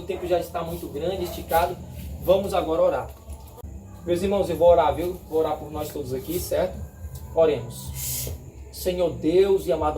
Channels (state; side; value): identical; both; correlation 1.00